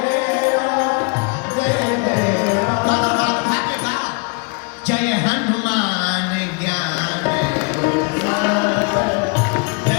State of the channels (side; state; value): right; quieter; 31.9 dB